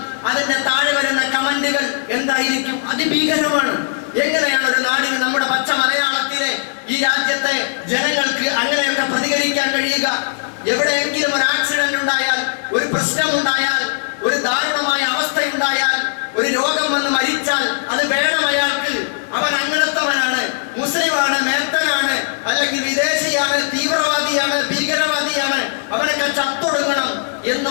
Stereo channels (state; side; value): silent; right; digital silence